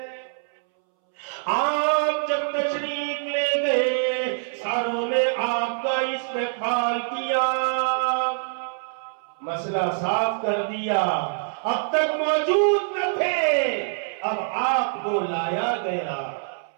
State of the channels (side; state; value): left; silent; 62 dB below the other